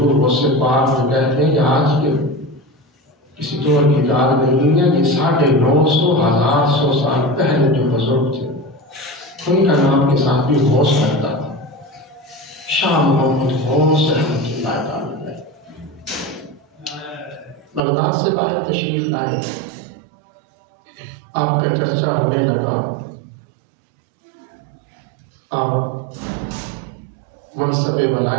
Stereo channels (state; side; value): drops out; left; at 17.8 s